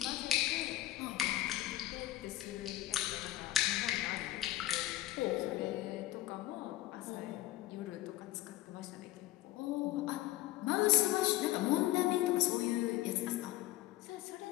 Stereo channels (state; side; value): quieter; right; 15.4 dB